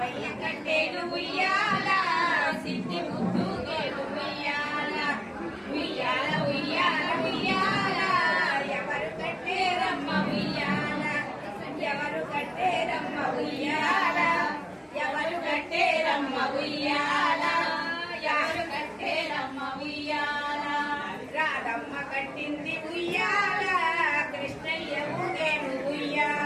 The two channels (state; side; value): identical; both; correlation 1.00